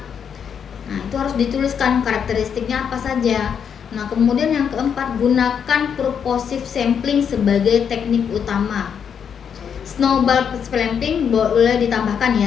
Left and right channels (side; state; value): right; quieter; 7.5 dB